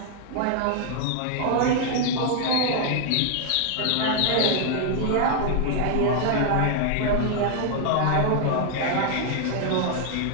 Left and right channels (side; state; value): both; different; correlation 0.00